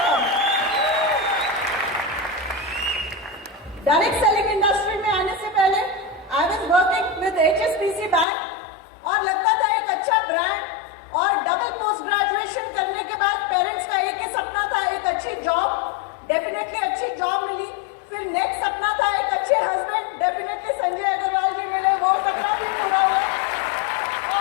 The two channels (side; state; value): right; drops out; at 8.2 s